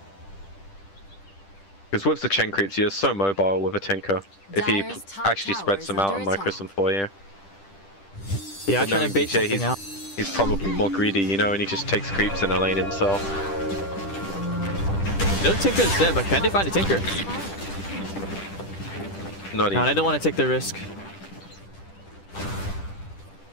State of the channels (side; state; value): right; late; 10 ms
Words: Because with the chain creeps, you're so mobile with a Tinker. If he actually spreads them out and micros them for you. Yeah, I'm trying to bait something out. He's probably more greedy, you know, and he just takes creeps in a lane himself. No Tinker is there, but can they find a Tinker? Not No, I don't want to take the risk.